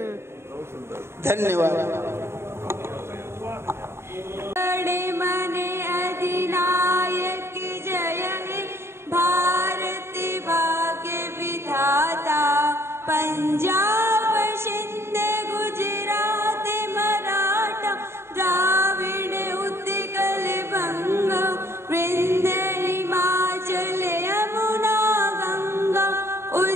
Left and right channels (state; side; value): late; left; 0.12 ms